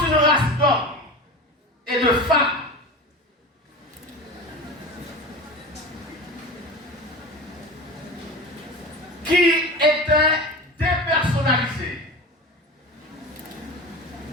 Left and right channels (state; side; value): normal; both; correlation 0.30